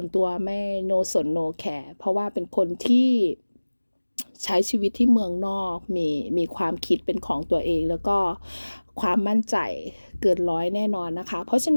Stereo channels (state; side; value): inverted; both; correlation -1.00